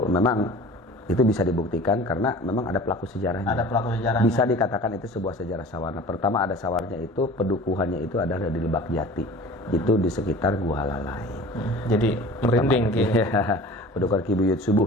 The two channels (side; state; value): both; normal; correlation 0.41